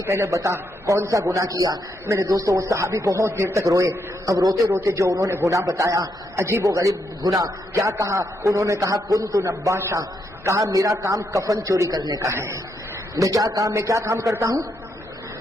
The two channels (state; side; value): normal; both; correlation 0.79